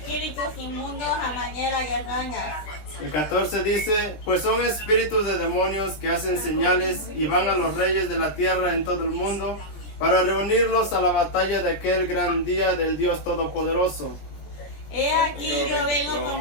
inmundos a manera de ranas. El 14 dice: pues son espíritus de demonios que hacen señales y van a los reyes de la tierra en todo el mundo para reunirlos a la batalla de aquel gran día del Dios Todopoderoso. He aquí yo vengo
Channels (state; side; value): late; right; 19 ms